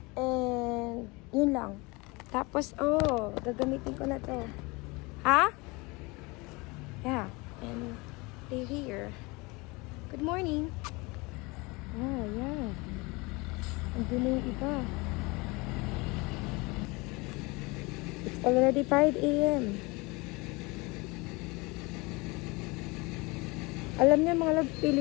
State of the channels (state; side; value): quieter; right; 25.5 dB